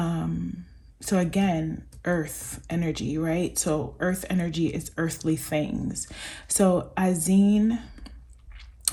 again, earth energy, right? So earth energy is earthly things. So Azine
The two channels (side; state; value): both; identical; correlation 1.00